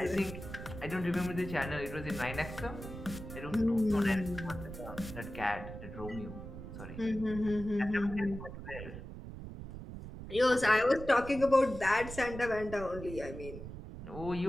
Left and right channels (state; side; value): noise; right; rumble, 10 dB below the sound